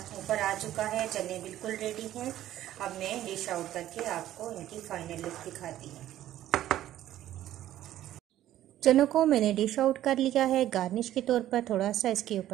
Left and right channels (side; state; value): left; quieter; 13.0 dB